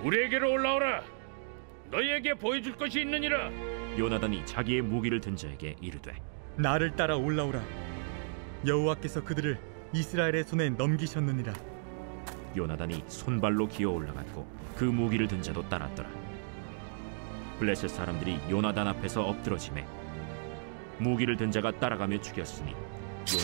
우리에게로 올라오라. 너희에게 보여줄 것이 있느니라. 요나단이 자기의 무기를 든 자에게 이르되 나를 따라 올라오라. 여호와께서 그들을 이스라엘의 손에 넘기셨느니라. 요나단이 손발로 기어 올라갔고 그 무기를 든 자도 따랐더라. 블레셋 사람들이 요나단 앞에서 엎드러지매 무기를 든 자가 따라가며 죽였으니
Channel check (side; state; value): left; silent; digital silence